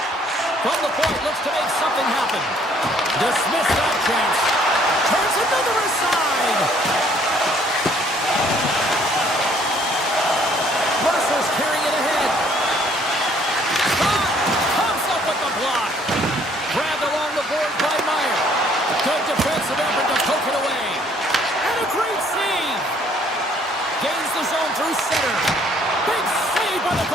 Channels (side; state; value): both; normal; correlation 0.62